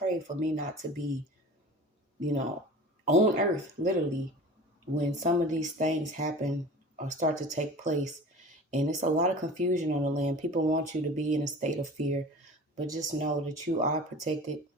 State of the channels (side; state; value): both; normal; correlation 0.39